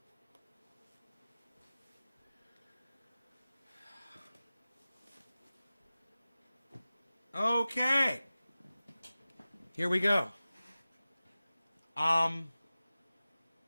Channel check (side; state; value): both; inverted; correlation -0.96